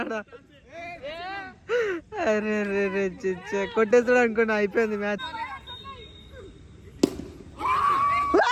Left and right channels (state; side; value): identical; both; correlation 1.00